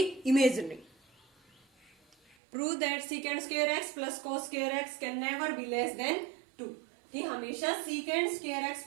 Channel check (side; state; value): left; drops out; at 2.4 s